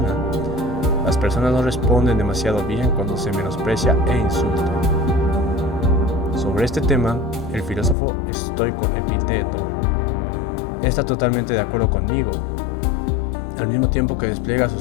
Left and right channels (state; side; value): drops out; right; at 8.0 s